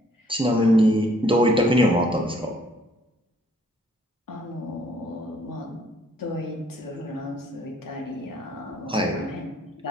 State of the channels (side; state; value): both; normal; correlation 0.63